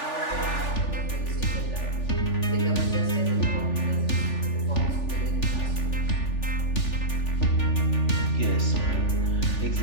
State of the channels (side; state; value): right; late; 3.4 ms